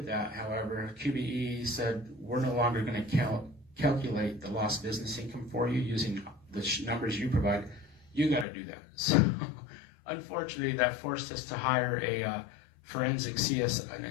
that, however, QBE said, we're no longer going to calculate the lost business income for you using the numbers you provide. You got to do that. So unfortunately, that forced us to hire an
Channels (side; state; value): right; drops out; at 8.5 s